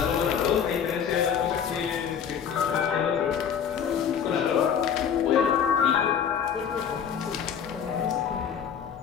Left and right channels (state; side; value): quieter; right; 7.8 dB